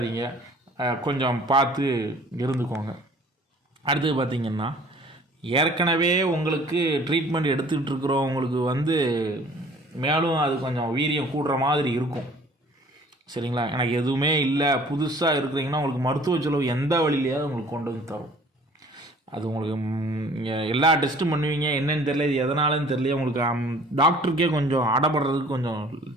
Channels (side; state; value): both; normal; correlation 0.51